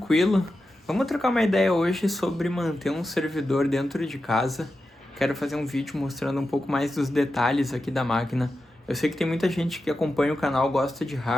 Vamos trocar uma ideia hoje sobre manter um servidor dentro de casa. Quero fazer um vídeo mostrando um pouco mais dos detalhes aqui da máquina. Eu sei que tem muita gente que acompanha o canal, gosta de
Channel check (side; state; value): both; normal; correlation 0.91